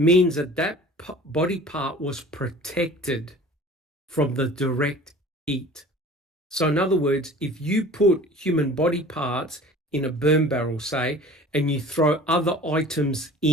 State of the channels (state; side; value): normal; both; correlation 0.44